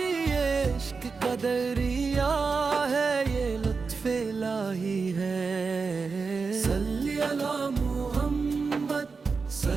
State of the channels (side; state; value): left; quieter; 4.8 dB